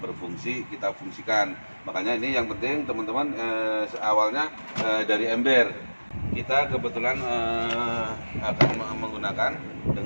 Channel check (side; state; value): both; inverted; correlation -1.00